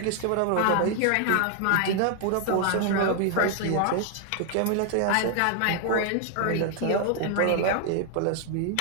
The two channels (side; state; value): both; different; correlation 0.00